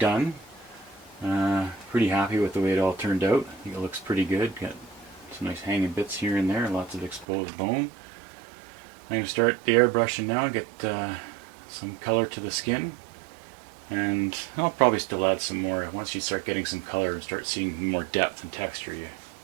Pretty happy with the way it all turned out. I think it looks pretty good. Got some nice hanging bits here and there, lots of exposed bone. I'm going to start the airbrushing now, get some color to the skin, and I'll probably still add some more. Once you start getting some color and start seeing more depth and texture, you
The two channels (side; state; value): left; drops out; at 7.2 s